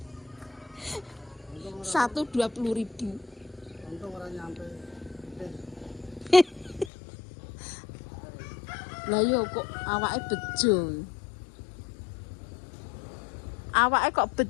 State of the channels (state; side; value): drops out; right; at 6.9 s